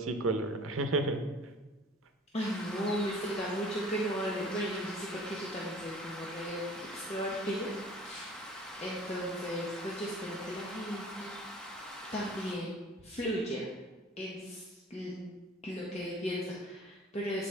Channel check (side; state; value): both; normal; correlation 0.47